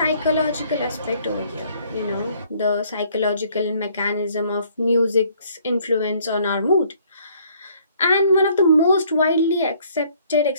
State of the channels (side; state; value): both; inverted; correlation -0.62